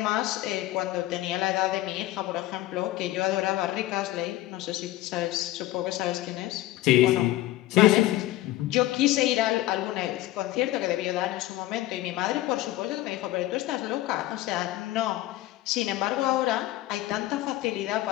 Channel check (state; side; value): quieter; right; 15.9 dB